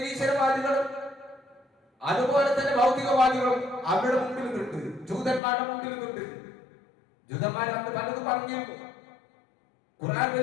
അതുപോലെ തന്നെ ഭൗതികവാദികളും അവരുടെ മുമ്പിൽ നിന്നുണ്ട്, ജൂതന്മാരുടെ മുമ്പിൽ നിന്നുണ്ട്. ജൂതന്മാർ അന്ന് പലതും പറഞ്ഞിരുന്നു. ഖുർആൻ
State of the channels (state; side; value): drops out; right; at 5.4 s